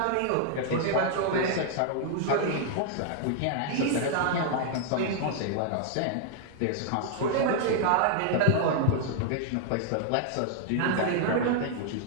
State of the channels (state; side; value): different; both; correlation -0.01